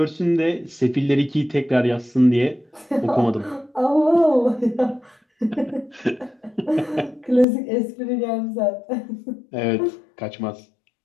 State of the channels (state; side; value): drops out; right; at 7.5 s